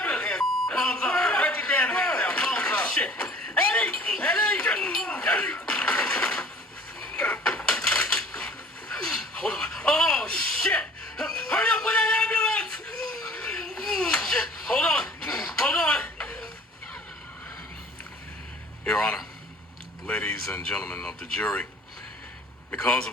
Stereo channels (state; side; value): normal; both; correlation 0.49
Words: Palms up. Write your damn hands down. Palms up. Shit. Eddie! Hold on. Oh, shit! Hurry up with that ambulance! Shit. Hold on. Your Honor, ladies and gentlemen of the jury, because